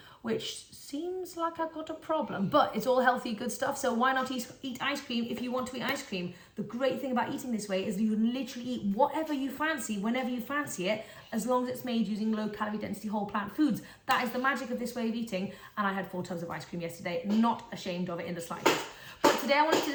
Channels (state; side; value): identical; both; correlation 1.00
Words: which seems like I've got a problem, but it's all healthy, good stuff. So why not eat ice cream if you want to eat ice cream? The great thing about eating this way is you can literally eat whatever you fancy, whenever you fancy it, as long as it's made using low calorie density whole plant foods. That is the magic of this way of eating. And I had 4 tubs of ice cream yesterday, not ashamed of it in the slightest. But today I